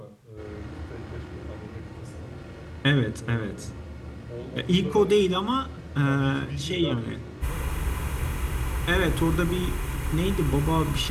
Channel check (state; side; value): identical; both; correlation 1.00